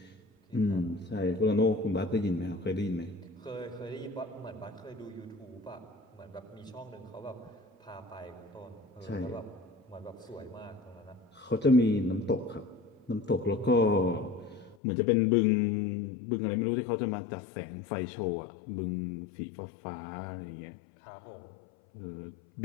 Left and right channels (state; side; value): drops out; right; at 14.8 s